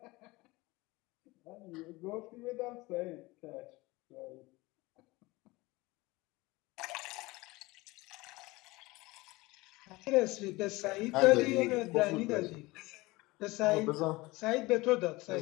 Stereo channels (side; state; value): right; quieter; 21.7 dB